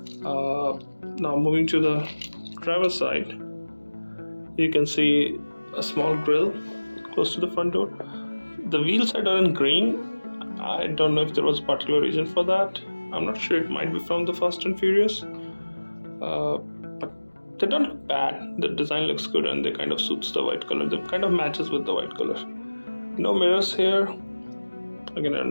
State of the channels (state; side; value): inverted; both; correlation -1.00